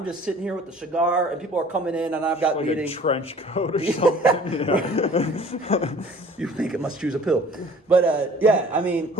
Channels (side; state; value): both; normal; correlation 0.50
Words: just sitting here with the cigar, and people are coming in, and I've got like meetings. A trench coat or something. You think it must choose a pill, but yeah, I mean,